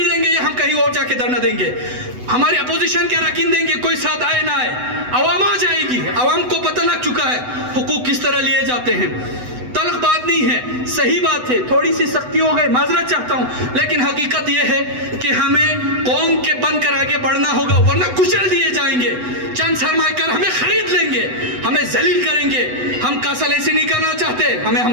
دیں گے یا ہم کہیں اور جا کے دھرنا دیں گے. ہمارے اپوزیشن کے اراکین دیں گے, کوئی ساتھ آئے نہ آئے, عوام آ جائے گی. عوام کو پتہ لگ چکا ہے حقوق کس طرح لیے جاتے ہیں. تلخ بات نہیں ہے, صحیح بات ہے, تھوڑی سی سختی ہو گئی, معذرت چاہتا ہوں, لیکن حقیقت یہ ہے کہ ہمیں قوم کے بن کر آگے بڑھنا ہوگا, ورنہ کچل دیے جائیں گے. چند سرمایہ کار ہمیں خرید لیں گے, ہمیں ذلیل کریں گے. ہم کاسل ایسی نہیں کرنا چاہتے, ہمیں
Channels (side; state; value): left; late; 8.0 ms